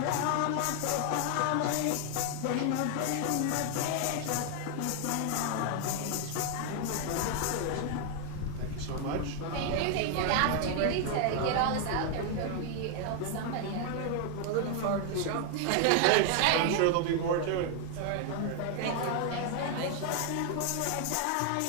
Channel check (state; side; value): different; both; correlation 0.00